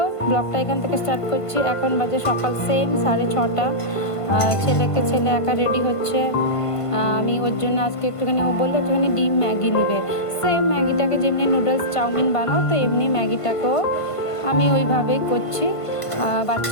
ব্লগটা এখান থেকে স্টার্ট করছি। এখন বাজে সকাল সেম 6:30। ছেলে একা রেডি হচ্ছে। আমি ওর জন্য আজকে একটুখানি, ও বললো একটুখানি ডিম ম্যাগি নিবে। সেম ম্যাগিটাকে যেমনি নুডলস চাউমিন বানাও, তো এমনি ম্যাগিটাকেও আমি ওইভাবেই করছি।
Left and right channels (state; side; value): late; right; 1.5 ms